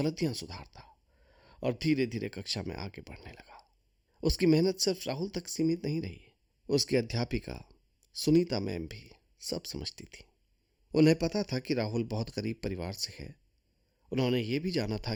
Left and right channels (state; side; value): identical; both; correlation 1.00